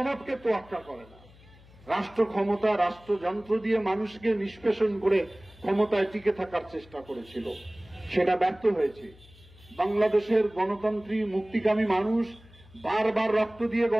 তোয়াক্কা করে না। রাষ্ট্র ক্ষমতা, রাষ্ট্রযন্ত্র দিয়ে মানুষকে নিষ্পেষণ করে ক্ষমতায় টিকে থাকার চেষ্টা করেছিল, সেটা ব্যর্থ হয়েছে। বাংলাদেশের গণতন্ত্রী মুক্তিকামী মানুষ বারবার রক্ত দিয়ে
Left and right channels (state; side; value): noise; left; hum, 24 dB below the sound